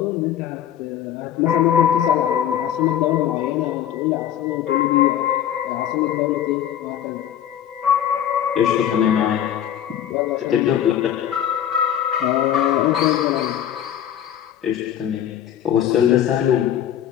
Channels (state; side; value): quieter; right; 10.3 dB